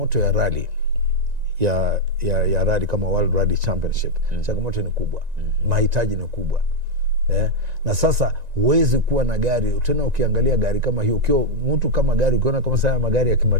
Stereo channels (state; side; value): late; left; 1.9 ms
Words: ya rally ya rally kama World Rally Championship, changamoto ni kubwa, mahitaji ni kubwa. Na sasa huwezi kuwa na gari tena. Ukiangalia gari kama hiyo, ukiwa mtu kama gari, ukiona kama sana magari ya